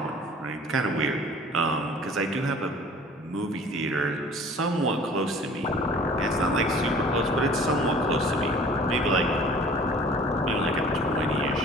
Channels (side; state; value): both; normal; correlation 0.47